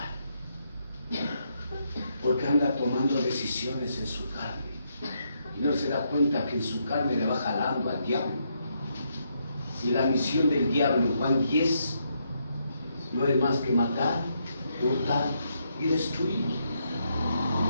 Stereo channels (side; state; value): both; inverted; correlation -0.78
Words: Porque anda tomando decisiones en su carne y no se da cuenta que en su carne le va jalando al diablo. Y la misión del diablo en Juan 10 no es más que matar, hurtar y destruir.